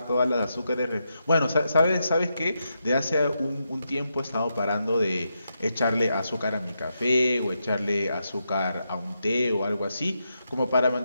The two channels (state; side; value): inverted; both; correlation -0.84